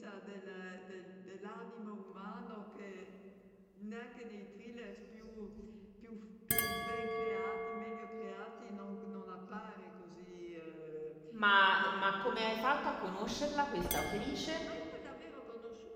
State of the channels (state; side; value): identical; both; correlation 1.00